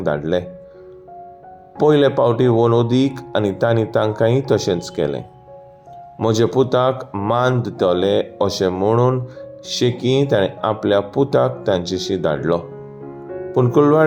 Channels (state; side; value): identical; both; correlation 1.00